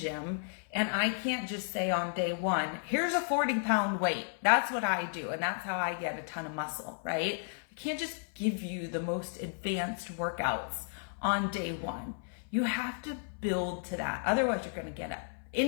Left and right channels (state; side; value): silent; right; 56 dB below the other